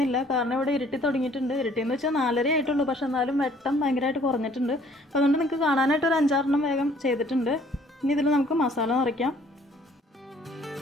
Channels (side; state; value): both; normal; correlation 0.58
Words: കാരണം ഇവിടെ ഇരുട്ടി തുടങ്ങിയിട്ടുണ്ട്. ഇരുട്ടിയെന്ന് വെച്ചാൽ 4:30 ആയിട്ടുള്ളൂ. പക്ഷെ എന്നാലും വെട്ടം ഭയങ്കരമായിട്ട് കുറഞ്ഞിട്ടുണ്ട്. അപ്പോൾ അതുകൊണ്ട് നിങ്ങൾക്ക് കാണാനായിട്ട് ഒരു 5-6 വേഗം ചെയ്തിട്ടുണ്ട്. ഇനി ഇതിൽ നമുക്ക് മസാല നിറയ്ക്കാം.